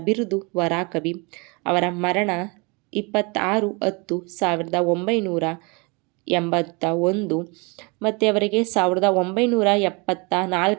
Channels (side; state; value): left; quieter; 29.3 dB